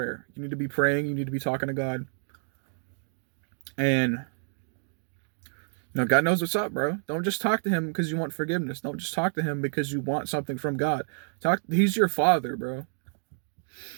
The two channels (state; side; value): silent; left; 59 dB below the other